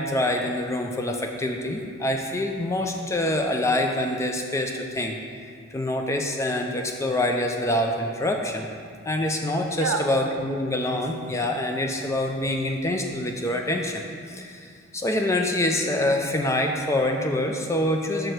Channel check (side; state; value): both; normal; correlation 0.44